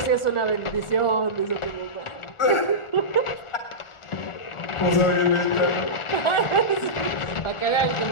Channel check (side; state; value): right; late; 1.4 ms